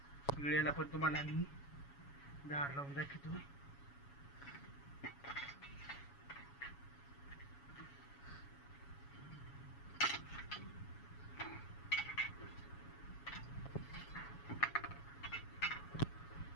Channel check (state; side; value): late; right; 7.1 ms